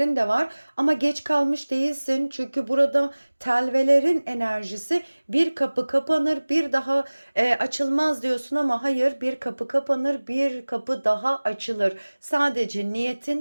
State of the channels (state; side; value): inverted; both; correlation -1.00